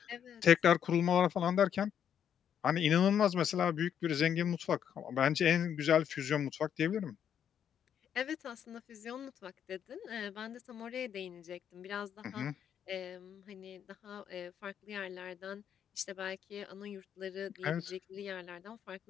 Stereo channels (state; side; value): quieter; right; 8.8 dB